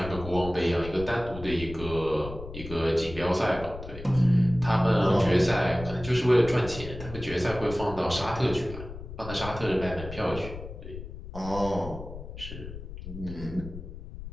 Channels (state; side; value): noise; left; rumble, 11 dB below the sound